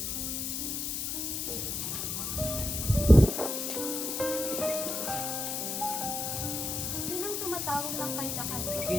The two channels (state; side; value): noise; left; hiss, 2 dB below the sound